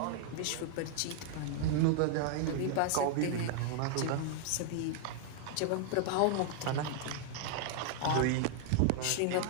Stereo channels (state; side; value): different; both; correlation 0.00